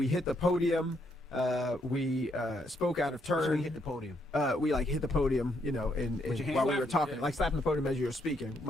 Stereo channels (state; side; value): normal; both; correlation 0.75